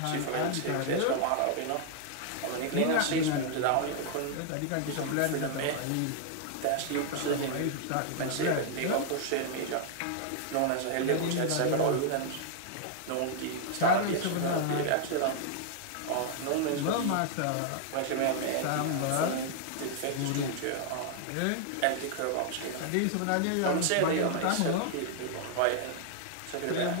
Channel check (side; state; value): both; different; correlation 0.00